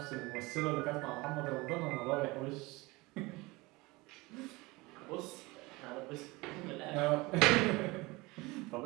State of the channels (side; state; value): left; quieter; 22.8 dB